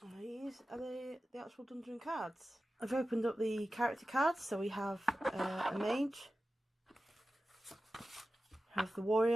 These are the actual dungeon cards. I've opened up the character cards, so we have a mage, we have the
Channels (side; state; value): both; normal; correlation 0.94